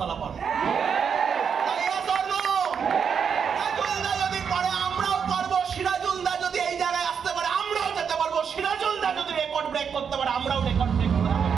পারবো। সিরাজুলদা যদি পারে, আমরাও পারবো। সিরাজুলদা যদি এই জায়গায় আসতে পারে, আমরাও যেতে পারবো। সিরাজুলদা যদি রেকর্ড ব্রেক করতে পারে, আমরাও রেকর্ড ব্রেক করতে পারবো।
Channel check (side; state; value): left; quieter; 6.9 dB